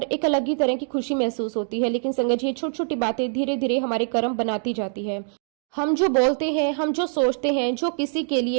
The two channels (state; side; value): silent; left; digital silence